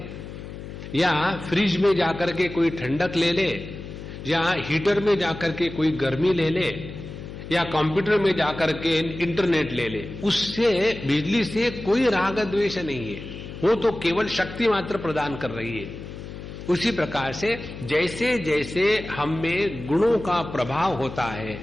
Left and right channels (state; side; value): noise; left; hum, 11 dB below the sound